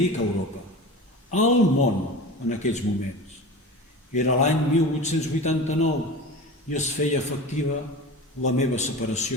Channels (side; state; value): both; normal; correlation 0.32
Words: Europa? Al món en aquells moments. Era l'any 1889 i es feia efectiva la meva